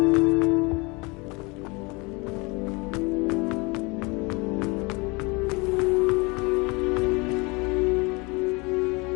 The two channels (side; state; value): right; quieter; 27.3 dB